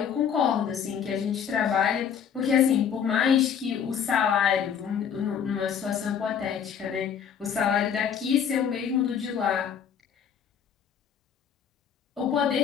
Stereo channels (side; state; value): right; quieter; 7.8 dB